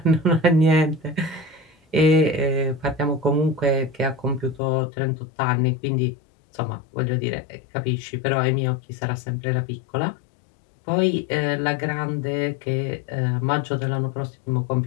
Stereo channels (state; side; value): drops out; right; at 4.6 s